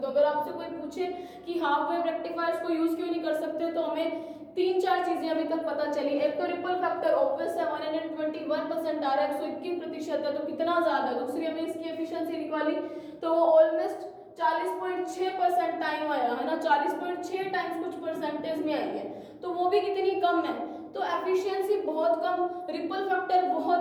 अगर आपसे कोई पूछे कि हाफ वेव रेक्टिफायर्स को यूज क्यों नहीं कर सकते, तो हमें 3-4 चीजें अभी तक पता चली। एक तो रिपल फैक्टर ऑब्वियस है, 121% आ रहा है, 121% है, तो कितना ज्यादा। दूसरी हमने इसकी एफिशिएंसी निकाली तो वो ऑलमोस्ट 40.6% टाइम आया है ना, 40.6 टाइम्स कुछ परसेंटेज में आई है, तो वो भी कितनी कम है। तो एफिशिएंसी बहुत कम, रिपल फैक्टर बहुत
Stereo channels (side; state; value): both; identical; correlation 1.00